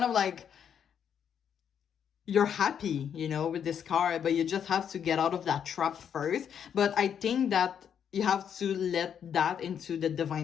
of like you're happy, with this card, but you just have to get out of that trap first. But I think that you have to let that into the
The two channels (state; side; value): quieter; right; 8.3 dB